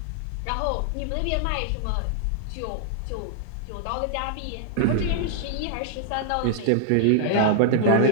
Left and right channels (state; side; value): different; both; correlation -0.01